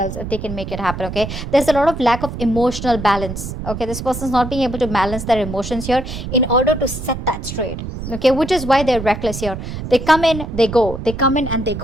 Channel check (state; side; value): noise; right; rumble, 8 dB below the sound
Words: if they can make it happen, okay? There's a lot of lack of emotional balance, okay? This person's not being able to balance their emotions here in order to set that straight, okay? Which is why they're reckless here. They come in, they go. They come in and they